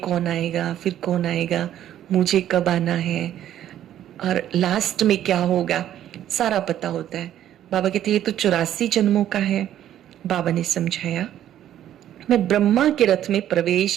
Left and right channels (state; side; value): quieter; left; 11.5 dB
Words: आएगा, फिर कौन आएगा, मुझे कब आना है, और लास्ट में क्या होगा, सारा पता होता है। बाबा कहते ये तो 84 जन्मों का है। बाबा ने समझाया, मैं ब्रह्मा के रथ में